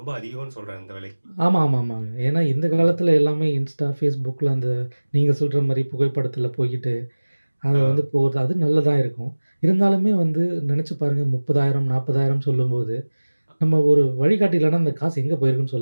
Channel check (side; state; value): both; inverted; correlation -1.00